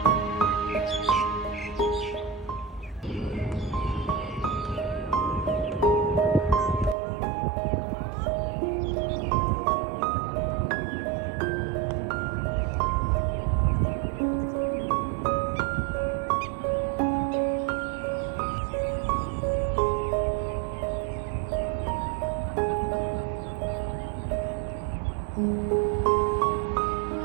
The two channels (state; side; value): drops out; left; at 7.0 s